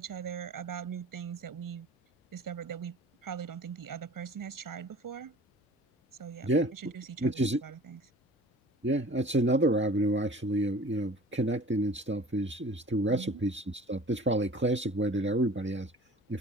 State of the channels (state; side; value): normal; both; correlation 0.45